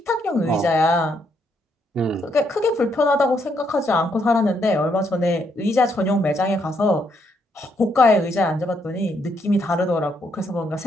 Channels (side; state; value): both; normal; correlation 0.75